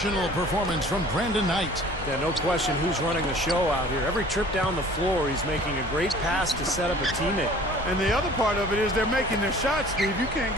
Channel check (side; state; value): both; normal; correlation 0.49